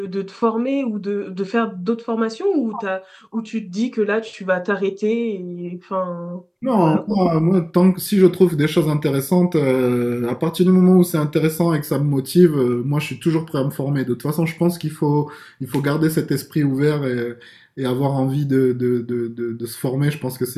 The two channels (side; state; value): both; identical; correlation 1.00